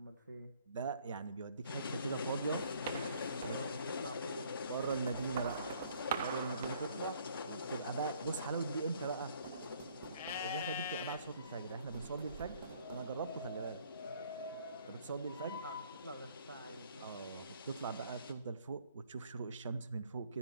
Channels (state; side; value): inverted; both; correlation -0.60